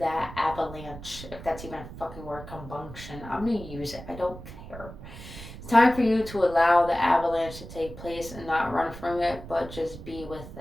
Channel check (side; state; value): right; noise; rumble, 13 dB below the sound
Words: avalanche. If that's even a fucking word, combustion. I'm going to use it. I don't care. It's time for you to allow the avalanche to take place and not run from it, but just be with